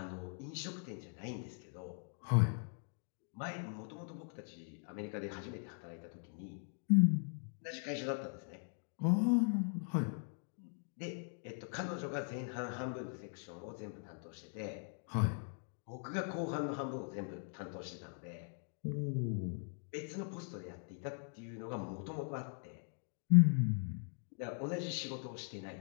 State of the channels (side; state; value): right; silent; 51 dB below the other